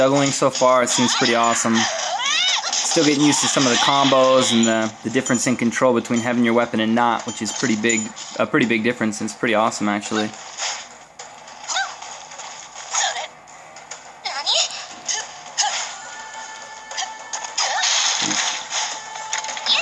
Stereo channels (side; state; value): both; identical; correlation 1.00